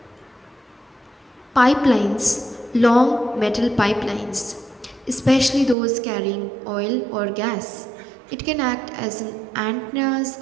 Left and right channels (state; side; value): drops out; left; at 5.8 s